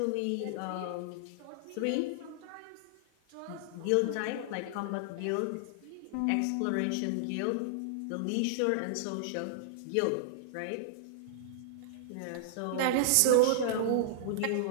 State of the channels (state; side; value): different; both; correlation -0.01